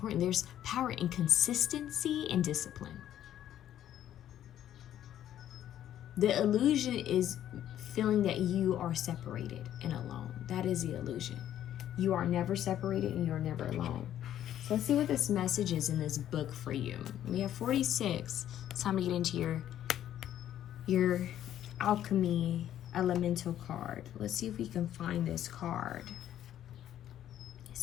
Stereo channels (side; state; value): right; quieter; 11.4 dB